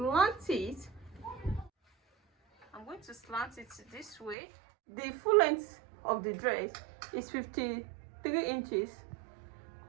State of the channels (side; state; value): left; drops out; at 4.4 s